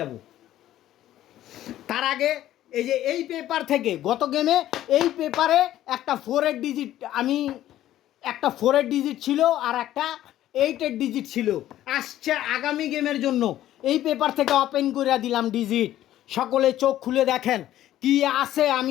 তার আগে এই যে এই পেপার থেকে গত গেমে এই পেপারে একটা 4-এর ডিজিট, আমি একটা 4-এর ডিজিট ছিল আর একটা 8-এর ডিজিট ছিল। আসছে আগামী গেমের জন্য এই পেপার থেকে ওপেন করে দিলাম ডিজিট। সকলে চোখ খুলে দেখেন কি আছে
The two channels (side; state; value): right; quieter; 13.1 dB